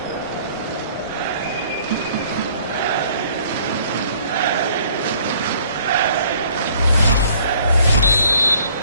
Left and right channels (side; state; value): both; inverted; correlation -0.58